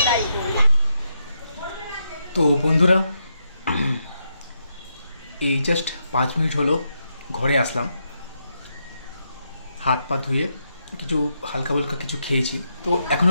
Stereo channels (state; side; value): inverted; both; correlation -0.82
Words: তো বন্ধুরা, এই জাস্ট 5 মিনিট হলো ঘরে আসলাম, হাত পা ধুয়ে কিছু হালকা হালকা কিছু খেয়েছি। তো